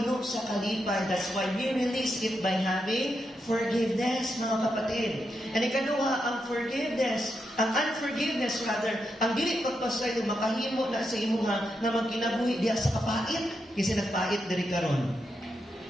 sa kalipay. That's why we release it by having forgiveness, mga kapatid. And ikaduha, ang unforgiveness rather, ang dili pagpasayo, makahimo na sa imuha na magkinabuhi diya sa kapait. Kasi nagpait diri karon.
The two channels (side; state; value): both; normal; correlation 0.84